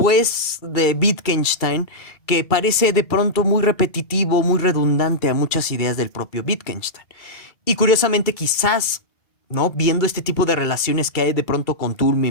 de Wittgenstein que parece de pronto muy repetitivo, muy redundante a muchas ideas del propio Wittgenstein. Y curiosamente quizás, ¿no? Viendo este tipo de relaciones que hay de pronto con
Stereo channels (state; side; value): late; right; 2.3 ms